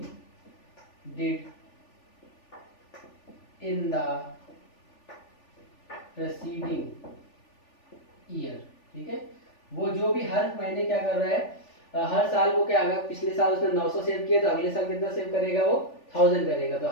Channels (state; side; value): late; right; 3.4 ms